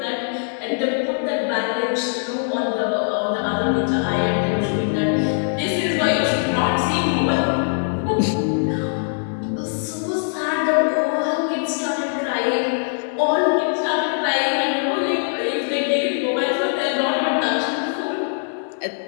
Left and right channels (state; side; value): silent; right; digital silence